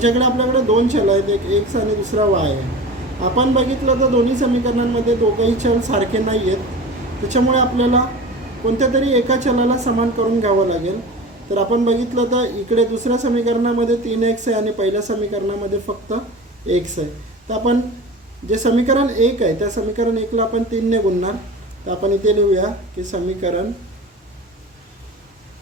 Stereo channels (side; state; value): both; normal; correlation 0.34